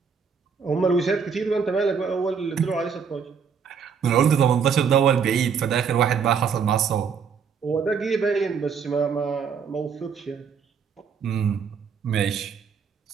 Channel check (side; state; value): left; quieter; 6.4 dB